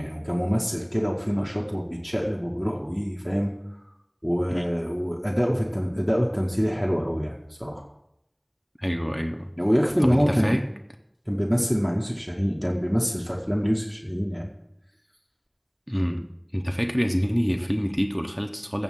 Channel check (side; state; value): both; identical; correlation 1.00